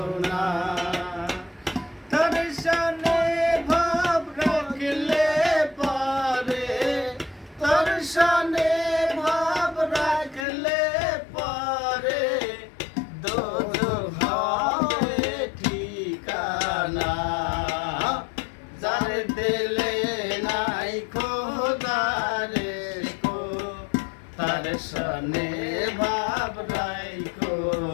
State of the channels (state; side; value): drops out; right; at 10.5 s